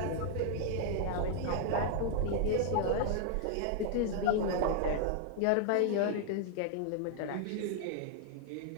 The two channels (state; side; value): different; both; correlation 0.00